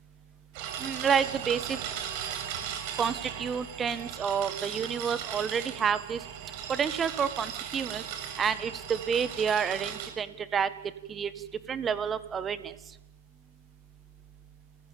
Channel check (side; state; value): left; quieter; 7.0 dB